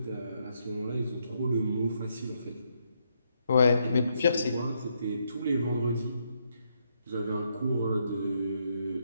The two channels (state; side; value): inverted; both; correlation -0.77